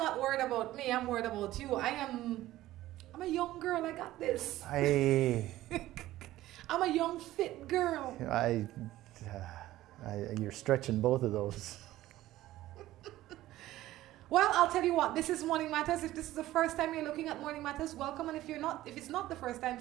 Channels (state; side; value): quieter; left; 15.4 dB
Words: worried about me. I'm worried about you. I'm a young girl. I got this. I'm a young, fit girl. You're stretching both of those. Well, I'll tell you what. This is Morning Matters. If this is the first time you're looking at Morning Matters, welcome. And if it's not the first time,